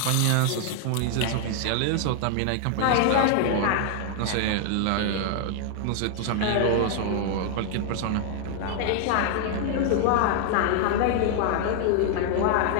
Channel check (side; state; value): both; different; correlation 0.00